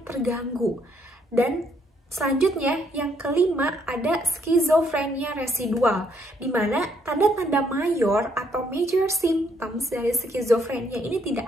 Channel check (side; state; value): both; normal; correlation 0.70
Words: terganggu. Dan selanjutnya yang kelima ada skizofrenia residual, di mana tanda-tanda mayor atau major symptoms dari skizofrenia ini